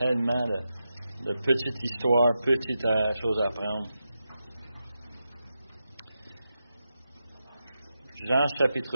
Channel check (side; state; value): both; inverted; correlation -0.88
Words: de petites histoires, petites choses à apprendre. Jean